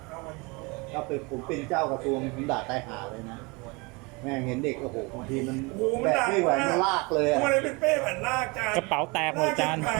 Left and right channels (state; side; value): quieter; left; 27.3 dB